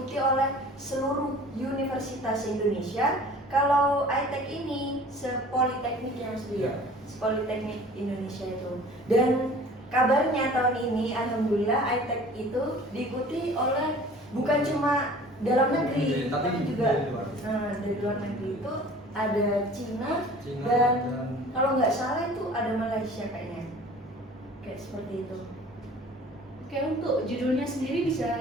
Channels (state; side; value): normal; both; correlation 0.46